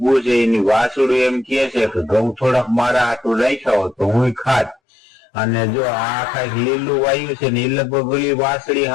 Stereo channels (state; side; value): drops out; right; at 4.8 s